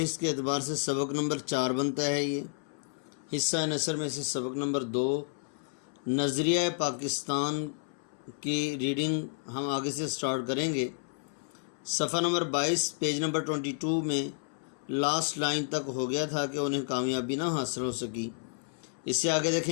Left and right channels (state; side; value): silent; right; 57 dB below the other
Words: کے اعتبار سے سبق نمبر 4 بنتا ہے۔ یہ حصہ نثر میں سے سبق نمبر 2 نظریہ پاکستان کی ریڈنگ ہم آگے سے سٹارٹ کریں گے۔ صفحہ نمبر 22 پیج نمبر 22 میں لاسٹ لائن تک ہو گیا تھا کہ انہیں کامیابی نہ حاصل ہو سکی۔ اس سے آگے